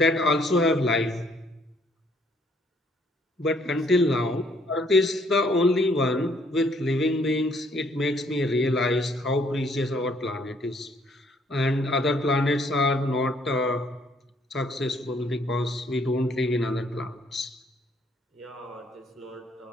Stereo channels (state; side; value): normal; both; correlation 0.66